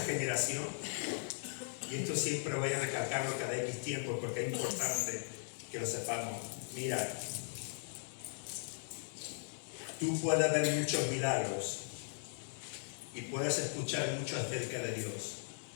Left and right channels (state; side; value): silent; right; digital silence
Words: y esto siempre voy a recalcarlo cada X tiempo porque es importante que lo sepamos. Mira, tú puedes ver muchos milagros y puedes escuchar mucho acerca de Dios.